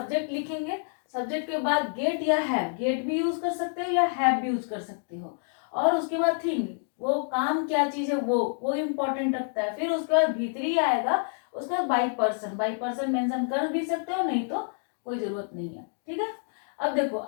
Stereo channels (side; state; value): right; silent; digital silence